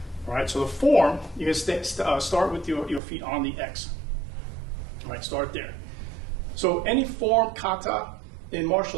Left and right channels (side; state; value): left; drops out; at 3.0 s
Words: All right, so the form, you can start with your feet on the X. All right, start there. So any form, kata, in